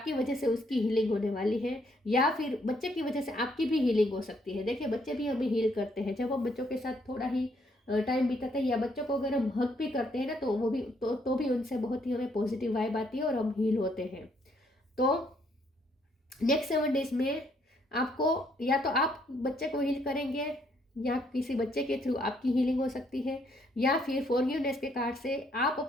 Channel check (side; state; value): both; normal; correlation 0.70